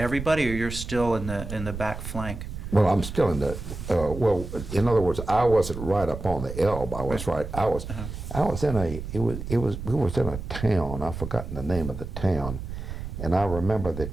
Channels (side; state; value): right; noise; rumble, 8 dB below the sound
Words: or you're still in the back flank? Well, I'm still in the, well, in other words, I wasn't right up on the Elbe. I was right, I was in we was in a town, I've forgotten the name of the town, and I remember